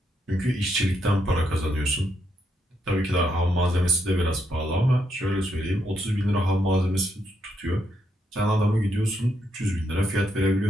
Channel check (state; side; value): normal; both; correlation 0.78